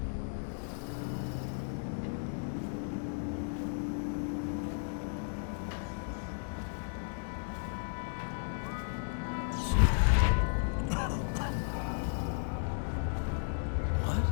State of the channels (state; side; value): silent; right; digital silence